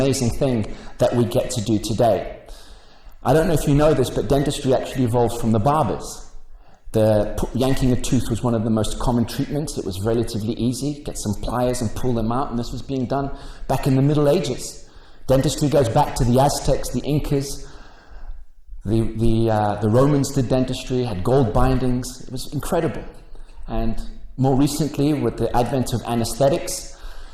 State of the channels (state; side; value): identical; both; correlation 1.00